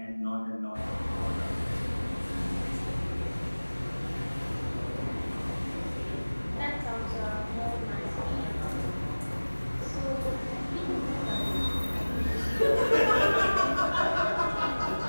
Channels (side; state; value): both; inverted; correlation -1.00